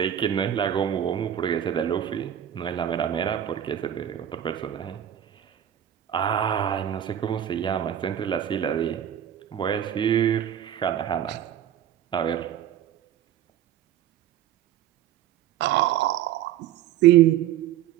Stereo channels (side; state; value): left; quieter; 10.8 dB